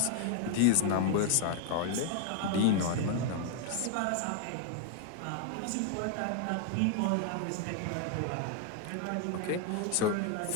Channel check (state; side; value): different; both; correlation 0.00